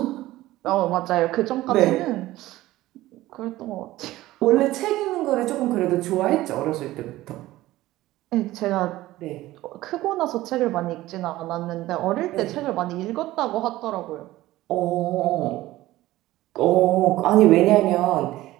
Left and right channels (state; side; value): quieter; left; 16.6 dB